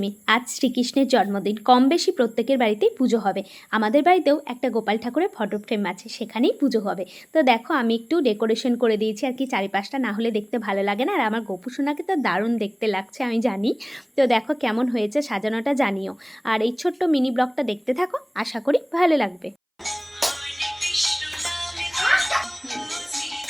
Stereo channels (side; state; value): both; identical; correlation 1.00